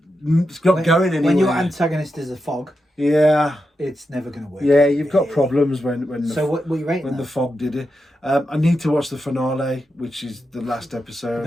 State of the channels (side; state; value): both; normal; correlation 0.87